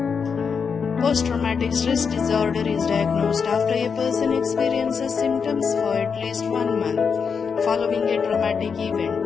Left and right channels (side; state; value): right; quieter; 6.0 dB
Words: Post-traumatic stress disorder is diagnosed after a person experiences symptoms for at least 1 month following a traumatic event.